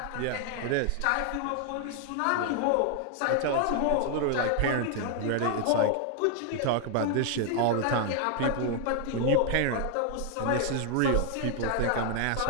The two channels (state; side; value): different; both; correlation 0.00